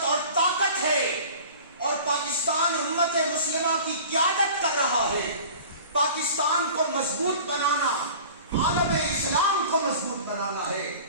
اور طاقت ہے، اور پاکستان امت مسلمہ کی قیادت کر رہا ہے۔ پاکستان کو مضبوط بنانا، عالم اسلام کو مضبوط بنانا ہے۔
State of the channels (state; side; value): inverted; both; correlation -0.42